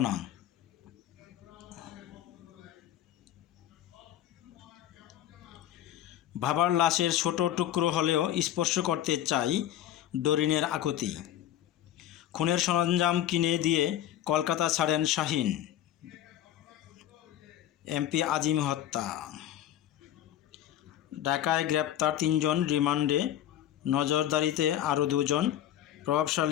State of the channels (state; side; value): quieter; right; 11.9 dB